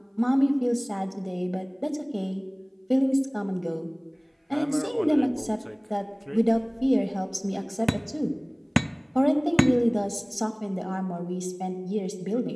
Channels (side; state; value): both; identical; correlation 1.00